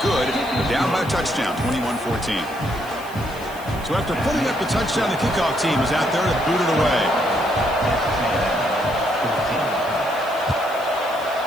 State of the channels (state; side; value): noise; left; hiss, 20 dB below the sound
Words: good. They're down by a touchdown, 21-14. So after putting up the touchdown, the kickoff team is out there to boot it away.